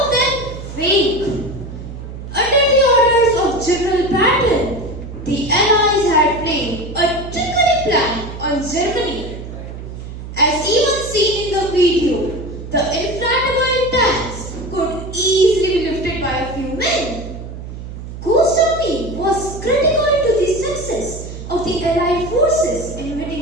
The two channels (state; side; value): noise; right; hum, 10 dB below the sound